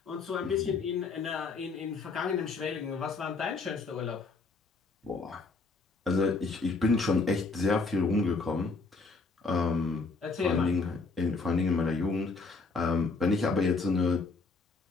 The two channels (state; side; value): quieter; right; 4.0 dB